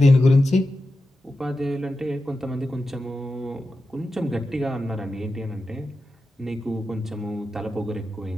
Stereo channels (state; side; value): normal; both; correlation 0.91